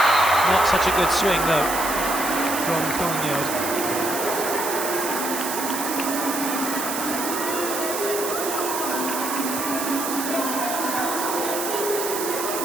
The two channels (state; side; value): noise; right; hiss, 4 dB below the sound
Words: Not such a good swing though from Kongyod.